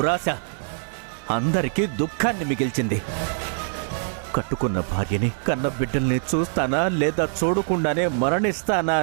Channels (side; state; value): left; silent; digital silence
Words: అందరికీ దుఃఖాన్ని మిగిల్చింది. కట్టుకున్న భార్యని, కన్న బిడ్డల్ని చూస్తానా లేదా చూడకుండానే మరణిస్తానా